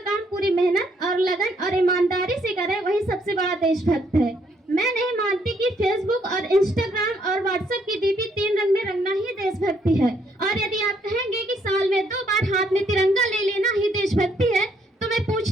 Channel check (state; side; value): normal; both; correlation 0.70